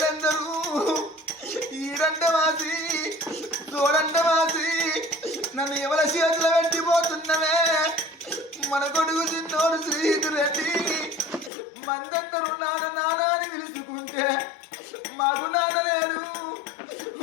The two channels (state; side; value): drops out; right; at 11.5 s